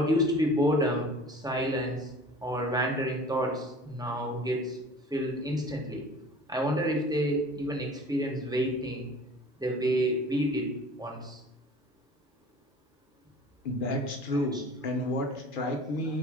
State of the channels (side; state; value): both; normal; correlation 0.44